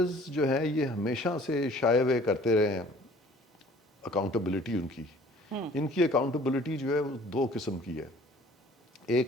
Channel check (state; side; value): normal; both; correlation 0.52